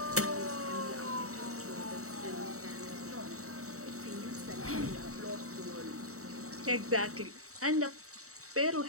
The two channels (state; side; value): late; left; 0.65 ms